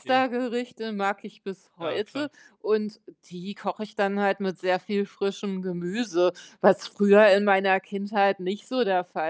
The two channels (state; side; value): identical; both; correlation 1.00